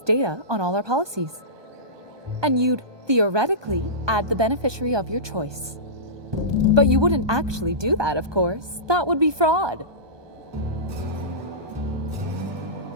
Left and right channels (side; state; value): left; late; 1.2 ms